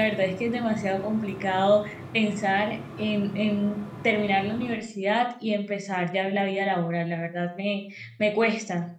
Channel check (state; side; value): identical; both; correlation 1.00